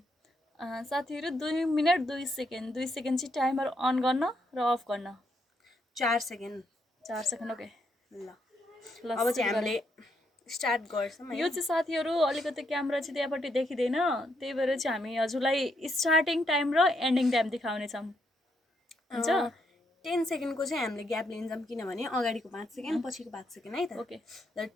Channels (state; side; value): normal; both; correlation 0.77